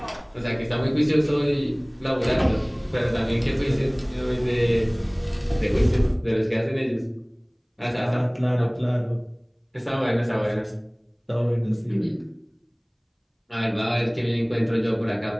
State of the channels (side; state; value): both; identical; correlation 1.00